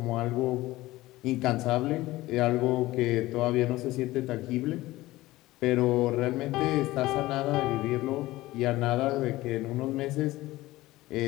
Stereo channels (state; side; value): quieter; right; 17.9 dB